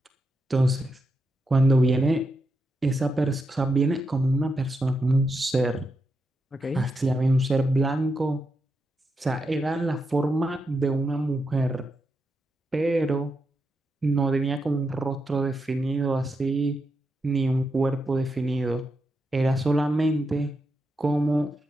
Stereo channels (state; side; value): normal; both; correlation 0.84